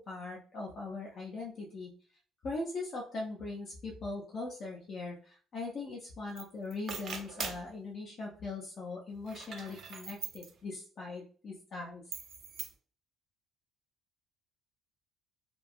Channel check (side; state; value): both; normal; correlation 0.70